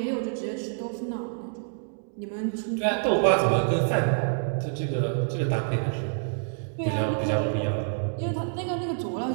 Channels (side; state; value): left; silent; digital silence